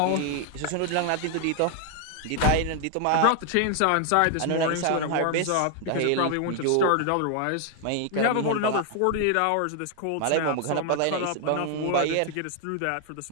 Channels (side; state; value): both; different; correlation 0.00